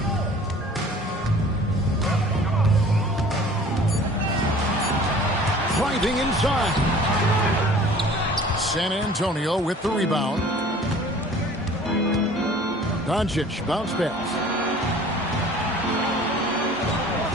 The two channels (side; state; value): both; normal; correlation 0.48